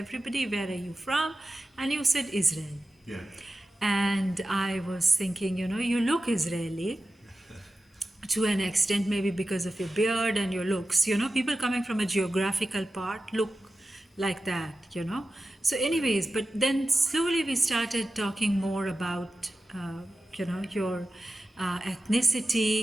where are you from? And you said Israel. Yeah. And I was thinking, you look Israeli to an extent, maybe because of your beard and your looks. People coming from a geographical part look like that. So anyways, but then slowly we started talking more about, your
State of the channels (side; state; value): both; normal; correlation 0.94